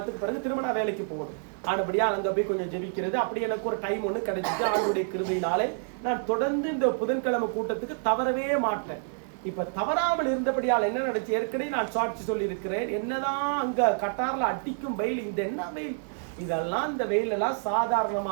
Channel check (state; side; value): silent; left; 59 dB below the other